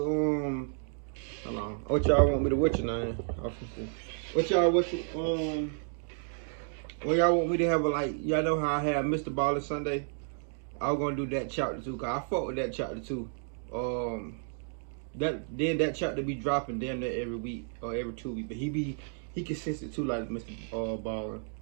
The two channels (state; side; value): silent; left; 57 dB below the other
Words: hold on. What y'all want me to what's your name? What y'all what y'all want me to have a like y'all know how I had Mr. Baller Sunday? I was gonna do that chapter too, cause I fuck with that chapter too. That chapter be dropping damn near every week or every 2 weeks, but he consistent too like Mr. Baller.